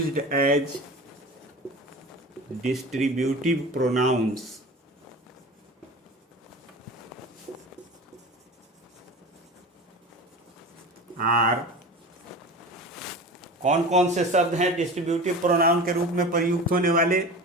as distributive pronouns are, कौन कौन से शब्द हैं डिस्ट्रीब्यूटिव प्रोनाउन के रूप में प्रयुक्त होने वाले?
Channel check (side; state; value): both; normal; correlation 0.33